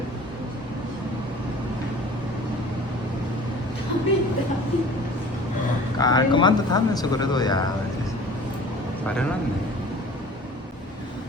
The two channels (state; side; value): normal; both; correlation 0.45